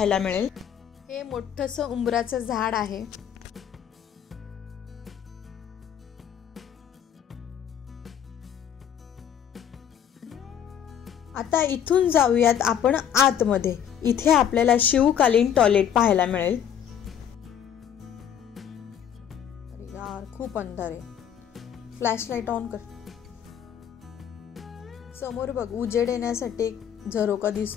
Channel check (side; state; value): right; quieter; 9.0 dB